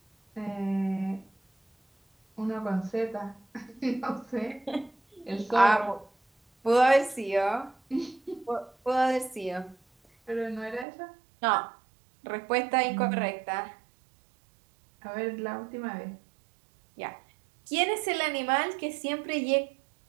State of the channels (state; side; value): drops out; left; at 10.9 s